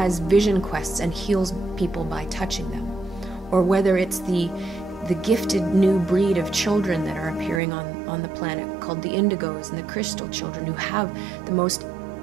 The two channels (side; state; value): left; drops out; at 7.6 s